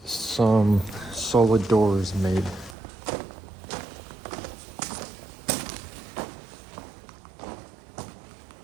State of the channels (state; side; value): drops out; left; at 2.8 s